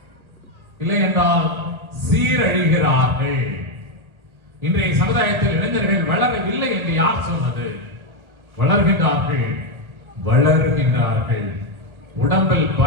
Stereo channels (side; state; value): left; late; 1.1 ms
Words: இல்லை என்றால் சீரழிகிறார்கள். இன்றைய சமுதாயத்தில் இளைஞர்கள் வளரவில்லை என்று யார் சொன்னது? வளர்கின்றார்கள். உடம்பில்